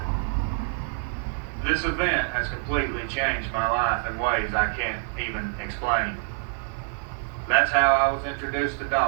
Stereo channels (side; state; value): left; silent; 61 dB below the other